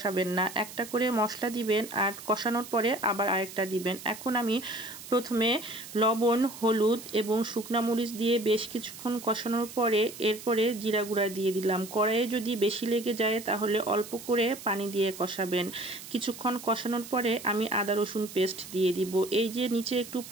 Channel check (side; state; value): right; noise; hiss, 14 dB below the sound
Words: না, একটা করে মশলা দিবেন আর কষানোর পরে আবার আরেকটা দিবেন। এখন আমি প্রথমে লবণ, হলুদ এবং শুকনা মরিচ দিয়ে বেশ কিছুক্ষণ কষানোর পরে এরপরে জিরা গুঁড়া দিয়ে দিলাম। কড়াইয়ে যদি বেশি লেগে যায় তাহলে অল্প করে পানি দিয়ে কষাবেন। কিছুক্ষণ কষানোর পরে আমি আদা রসুন পেস্ট দিয়ে দিব। এই যে নিচে একটু